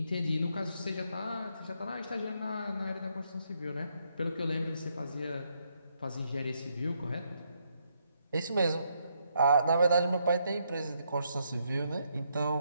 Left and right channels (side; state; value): both; inverted; correlation -0.76